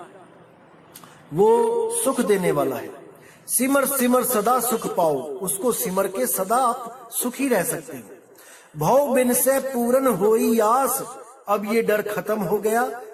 वो सुख देने वाला है। सिमर सिमर सदा सुख पाओ, उसको सिमर के सदा आप सुखी रह सकते हैं। भव बिन से पूर्ण होई आस, अब ये डर खत्म हो गया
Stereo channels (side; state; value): both; identical; correlation 1.00